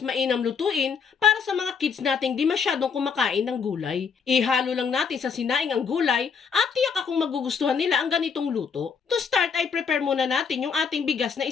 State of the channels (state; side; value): quieter; right; 6.1 dB